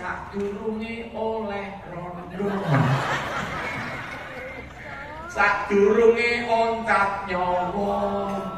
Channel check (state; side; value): identical; both; correlation 1.00